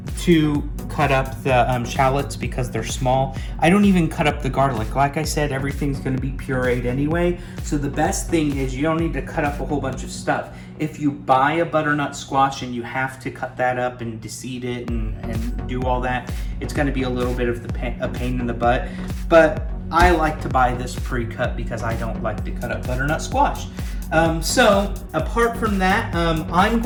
To cut up the shallots because they're small. I don't even cut up the garlic. Like I said, everything's gonna be pureed anyway. So the best thing is you don't need to cut up a whole bunch of stuff. If you buy a butternut squash and you have to cut that up and deseed it and do all that, it's gonna be a little bit of a pain in the butt. But I like to buy this pre-cut because I don't like to cut up butternut squash. So apart from that, I'm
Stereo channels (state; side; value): identical; both; correlation 1.00